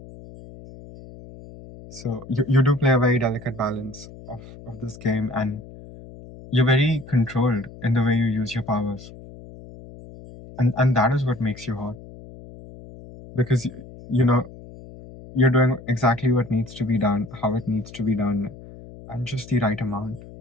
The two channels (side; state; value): left; noise; hum, 17 dB below the sound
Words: So you do play a very delicate balance of this game, and you're very controlled in the way you use your powers, and that is what makes you hot because you know you're doing exactly what needs to be done, how it needs to be done, and just the right amount.